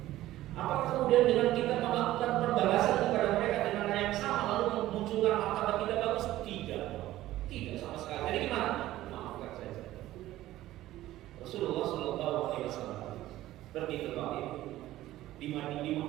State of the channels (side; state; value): left; quieter; 15.1 dB